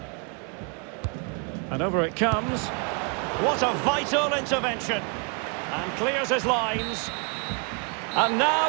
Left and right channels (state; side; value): quieter; left; 37.3 dB